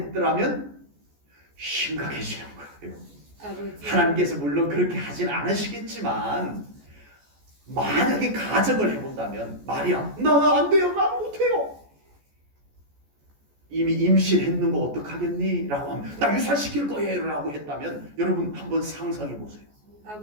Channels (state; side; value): late; left; 14 ms